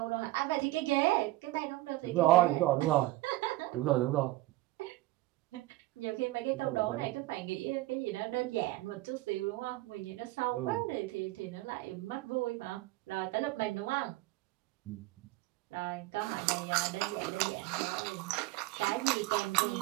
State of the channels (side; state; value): left; quieter; 18.5 dB